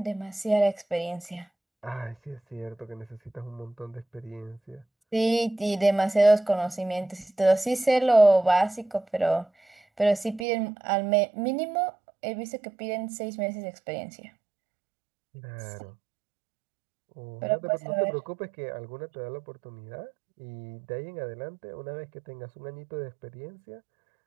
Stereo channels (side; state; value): left; drops out; at 10.5 s